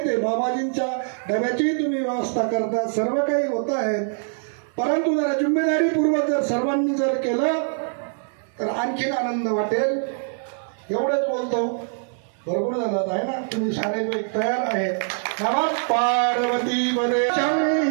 आहे. बाबाजींच्या डब्याचीही तुम्ही व्यवस्था करता, सर्व काही होत आहे. परंतु जरा जिम्मेदारीपूर्वक जर सर्वांनी जर केलं तर आणखीन आनंद वाटेल. एवढंच बोलतो. बरोबर झालं आहे ना? तुम्ही सारे तयार आहेत. नमः पार्वती पदे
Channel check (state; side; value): silent; left; digital silence